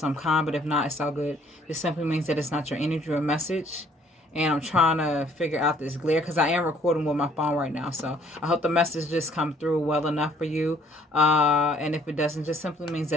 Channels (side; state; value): both; normal; correlation 0.61